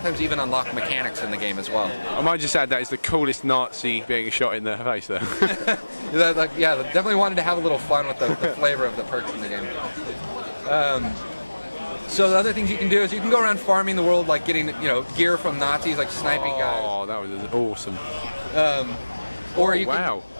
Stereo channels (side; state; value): both; inverted; correlation -1.00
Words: even unlock mechanics in the game as well. I might just add that is the coolest Nazi being shot in the face there. Yeah, definitely wanted to have a little fun with the flavor of the perks in the game. So the other things you can do is you can go around farming the world, like getting gear from Nazis, like sniping guys. Oh, that was awesome. Or you